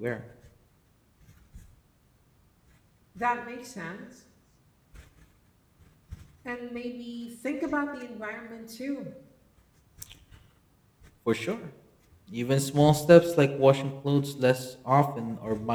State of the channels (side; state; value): both; identical; correlation 1.00